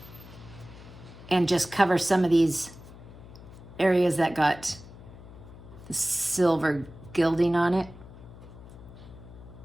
and just cover some of these areas that got the silver gilding on it.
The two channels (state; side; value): noise; left; hum, 18 dB below the sound